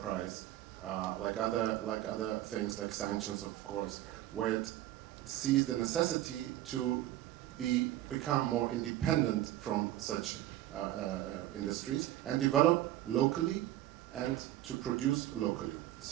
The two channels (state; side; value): quieter; left; 14.2 dB